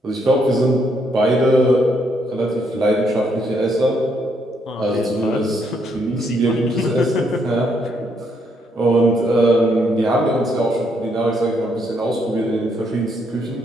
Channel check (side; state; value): both; normal; correlation 0.73